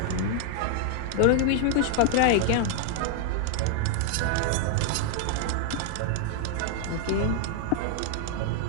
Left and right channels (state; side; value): different; both; correlation 0.00